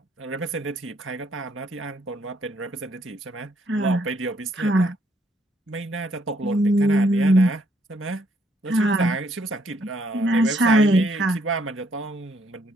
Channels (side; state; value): both; normal; correlation 0.70